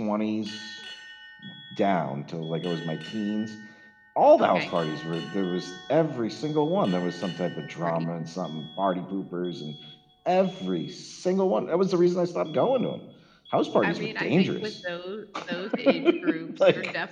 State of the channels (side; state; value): both; identical; correlation 1.00